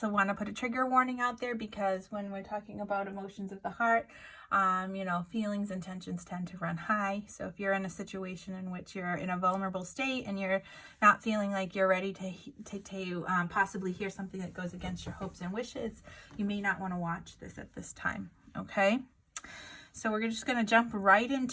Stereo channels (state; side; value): identical; both; correlation 1.00